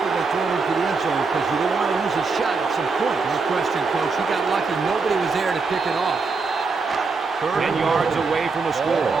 when throwing into the end zone because you don't want to lose a shot at some point. No question, Coach. He got lucky. Nobody was there to pick it off. 10 yards away from the score. Ball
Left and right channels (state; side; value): quieter; left; 4.4 dB